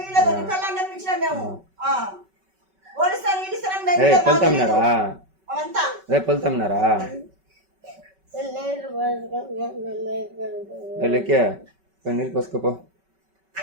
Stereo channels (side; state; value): left; late; 5.2 ms